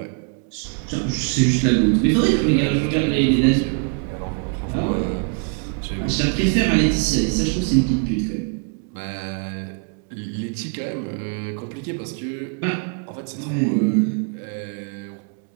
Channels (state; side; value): quieter; left; 39.1 dB